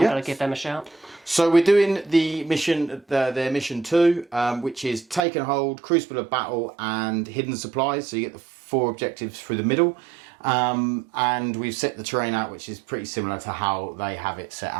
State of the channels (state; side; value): drops out; left; at 5.2 s